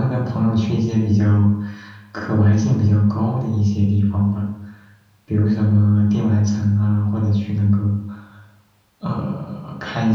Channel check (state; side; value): identical; both; correlation 1.00